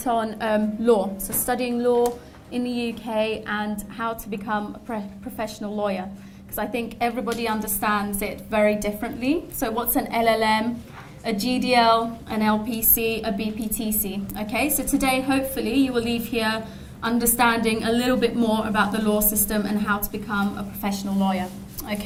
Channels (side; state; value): both; identical; correlation 1.00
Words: on law, so studying law in the UK and how to become a professional lawyer, because I think everybody understands it very differently. So what's an LLM, a GDL, an LPC, a BPTC? Okay, so today hopefully you will leave here understanding a little bit more about the law system and how to become a professional lawyer.